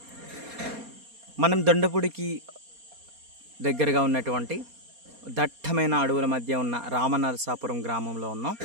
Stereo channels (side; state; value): left; late; 4.3 ms